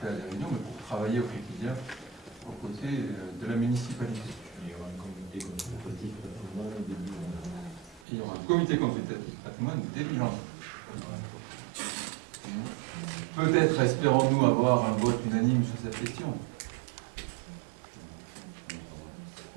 à des réunions, mais pour travailler au quotidien aux côtés de la municipalité. Il y aura un comité consultatif patrimoine début janvier. Il y aura un comité consultatif patrimoine début janvier. Peut-être espérons-nous avoir un vote unanime sur cette question.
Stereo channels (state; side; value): drops out; left; at 8.1 s